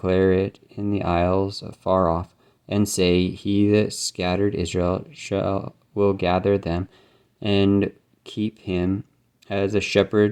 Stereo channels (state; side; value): identical; both; correlation 1.00